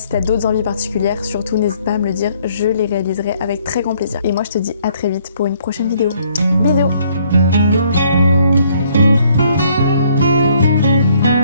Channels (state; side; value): inverted; both; correlation -0.64